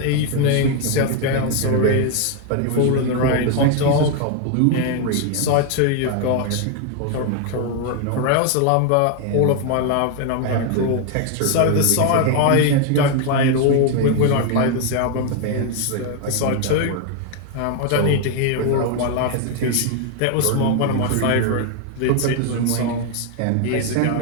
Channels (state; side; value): different; both; correlation 0.01